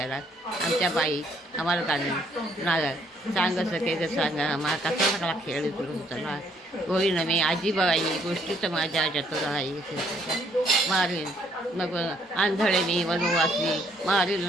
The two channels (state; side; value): normal; both; correlation 0.67